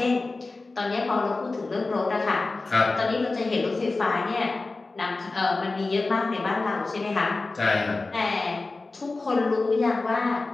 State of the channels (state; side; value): quieter; right; 3.5 dB